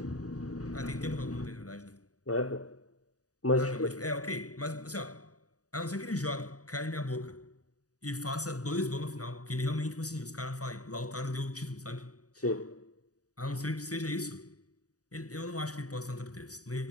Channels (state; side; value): late; right; 0.67 ms